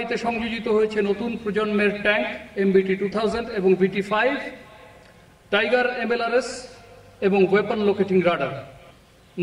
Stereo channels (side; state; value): both; identical; correlation 1.00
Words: সংযোজিত হয়েছে নতুন প্রজন্মের ট্যাঙ্ক MBT-2000 এবং VT-5, টাইগার MLRS এবং ওয়েপন লোকেটিং রাডার।